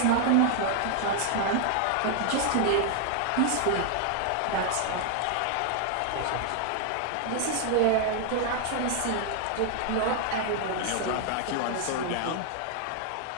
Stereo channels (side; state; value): both; different; correlation 0.00